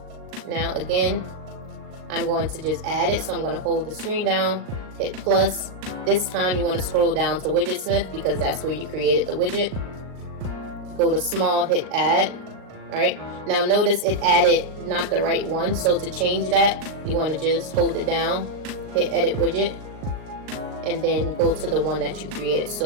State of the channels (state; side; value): late; left; 38 ms